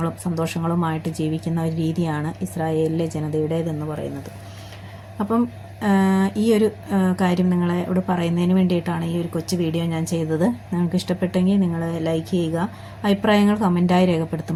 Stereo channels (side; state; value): both; identical; correlation 1.00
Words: സന്തോഷങ്ങളുമായിട്ട് ജീവിക്കുന്ന ഒരു രീതിയാണ് ഇസ്രായേലിലെ ജനതയുടേതെന്ന് പറയുന്നത്. അപ്പം ഈ ഒരു കാര്യം നിങ്ങളോട് പറയുന്നതിന് വേണ്ടിയിട്ടാണ് ഈ ഒരു കൊച്ചു വീഡിയോ ഞാൻ ചെയ്തത്. നിങ്ങൾക്ക് ഇഷ്ടപ്പെട്ടെങ്കിൽ നിങ്ങൾ ലൈക്ക് ചെയ്യുക, അഭിപ്രായങ്ങൾ കമൻറ്റായി